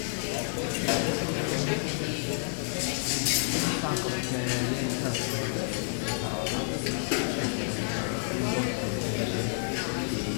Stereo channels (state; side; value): silent; right; 58 dB below the other